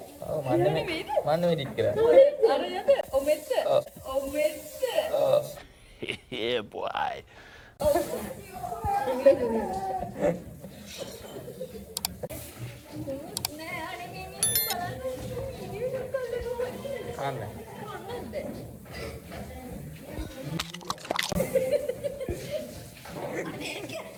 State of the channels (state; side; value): identical; both; correlation 1.00